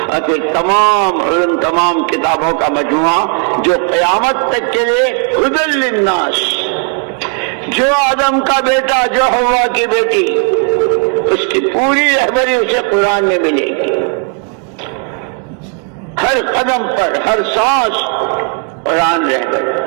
اور پھر تمام علم، تمام کتابوں کا مجموعہ جو قیامت تک کے لیے ہدی للناس. جو آدم کا بیٹا، جو حوا کی بیٹی، اس کی پوری رہبری اسے قرآن میں ملے گی. ہر قدم پر، ہر سانس قرآن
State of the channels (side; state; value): left; quieter; 39.0 dB